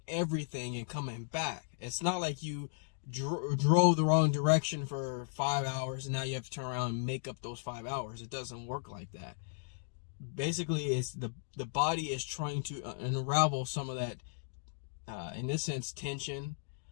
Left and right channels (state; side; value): silent; right; digital silence